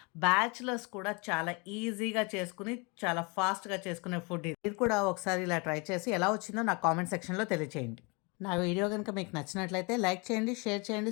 బ్యాచిలర్స్ కూడా చాలా ఈజీగా చేసుకొని, చాలా ఫాస్ట్‌గా చేసుకునే ఫుడ్ ఇది. మీరు కూడా ఒకసారి ఇలా ట్రై చేసి ఎలా వచ్చిందో నాకు కామెంట్ సెక్షన్‌లో తెలియచేయండి. నా వీడియో గనుక మీకు నచ్చినట్లయితే లైక్ చేయండి, షేర్ చేయండి,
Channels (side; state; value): right; quieter; 30.1 dB